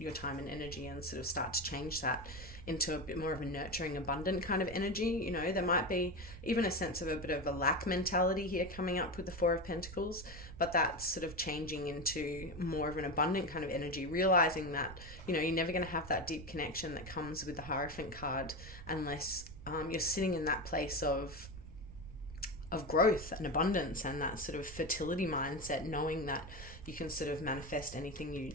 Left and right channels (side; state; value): right; noise; rumble, 13 dB below the sound